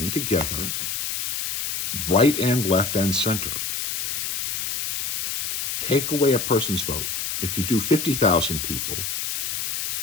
together, right and left and center, take away a person's vote. If you do 50,000 people,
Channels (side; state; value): left; noise; hiss, 2 dB below the sound